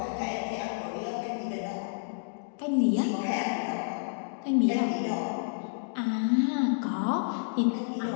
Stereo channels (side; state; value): right; silent; digital silence